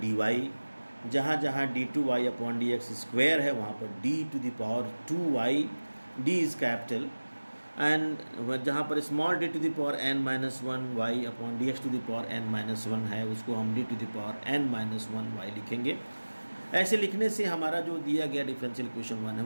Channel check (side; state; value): both; inverted; correlation -1.00